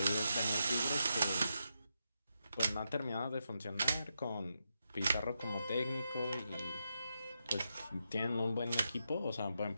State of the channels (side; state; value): both; inverted; correlation -0.85